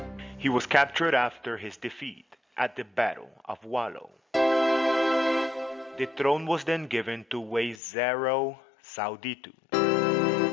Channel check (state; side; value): drops out; right; at 7.8 s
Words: He was captured after his defeat at the Battle of Wallo. The throne was then given to Wezero Sauditu,